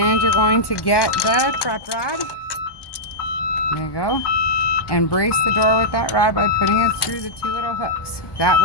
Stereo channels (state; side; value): late; right; 1.2 ms